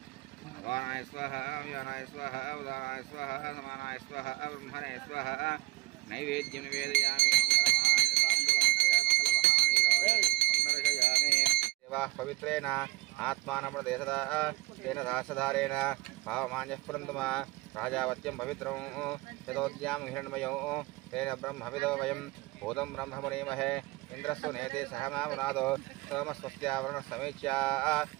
वानाय स्वाहा व्यानाय स्वाहा उदानाय स्वाहा समानाय स्वाहा ब्रह्मणे स्वाहा नैवेद्यं निवेदयामि। पवित्रेण आत्मानमृदेशदा तेन सहस्रधारेण भावमान्यः पुरन्दमा राजावत्यं पवित्रं यतोद्यां हिरण्मयो तेन ब्रह्मविदो वयं भूतं ब्रह्म मुनीमहे इन्द्रस्तु नेते सहमावनादो सोमस्वस्त्यावरणः समीच्या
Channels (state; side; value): quieter; left; 18.8 dB